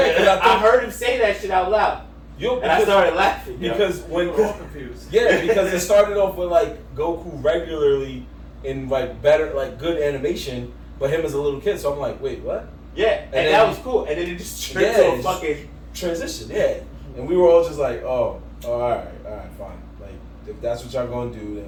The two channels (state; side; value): identical; both; correlation 1.00